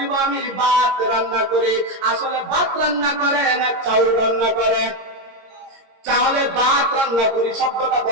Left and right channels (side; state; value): left; late; 22 ms